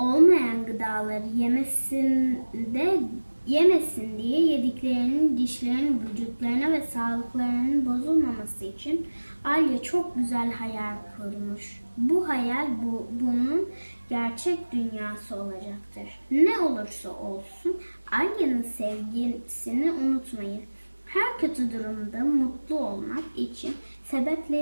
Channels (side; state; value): both; inverted; correlation -1.00